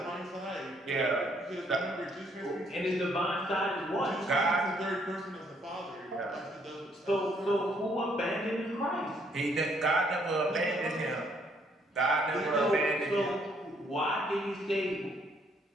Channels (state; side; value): normal; both; correlation 0.68